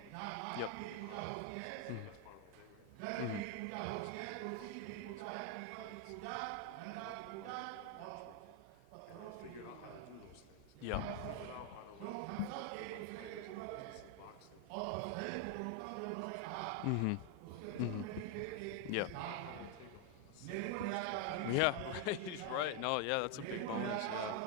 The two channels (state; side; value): different; both; correlation 0.01